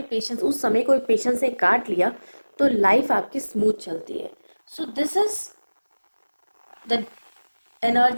पेशेंस, उस समय को पेशेंस से काट लिया तो लाइफ आपकी स्मूथ चलती है. So this is the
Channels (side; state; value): both; inverted; correlation -1.00